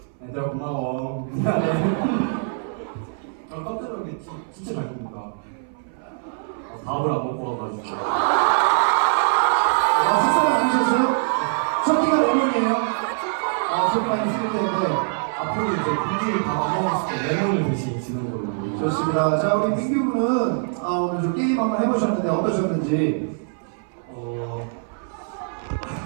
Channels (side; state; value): left; silent; 60 dB below the other